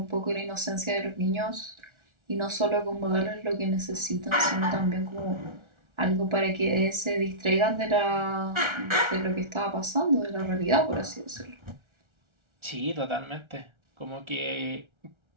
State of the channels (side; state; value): left; late; 1.3 ms